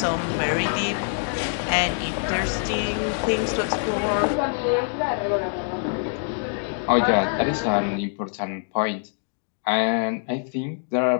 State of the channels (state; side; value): silent; right; 62 dB below the other